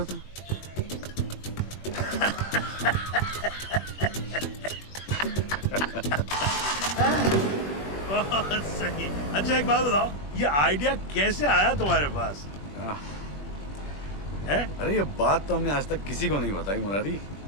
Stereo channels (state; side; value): late; right; 21 ms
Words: था? बहुत सही। अच्छा एक बात बताओ, ये आइडिया कैसे आया तुम्हारे पास? है? अरे ये बात तो हमने आज तक किसी को नहीं बताई मुरारी।